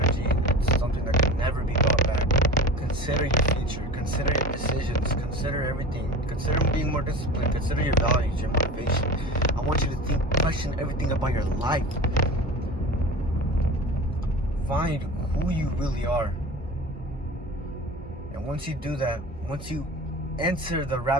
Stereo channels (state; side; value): normal; both; correlation 0.33